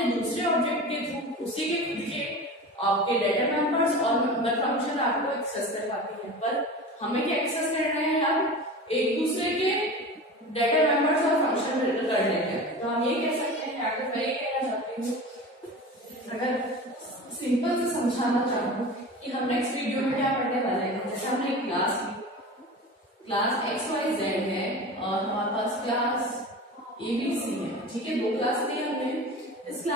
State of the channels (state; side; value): normal; both; correlation 0.33